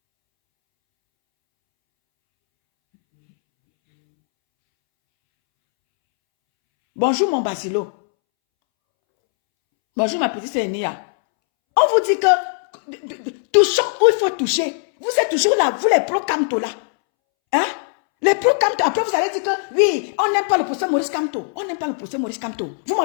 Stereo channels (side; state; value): right; silent; 66 dB below the other